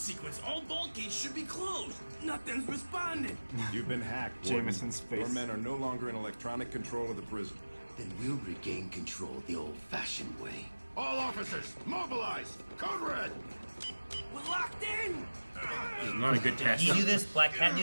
All vault gates should be closed. Nothing's responding. You've been hacked, Jameson's Warden. face. Your men are no longer in electronic control of the prison. Then we'll regain control the old-fashioned way. All officers, mobilize! Code red! We're locked in. It's not a good test. Did he do this? Black Cat do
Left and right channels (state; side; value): inverted; both; correlation -1.00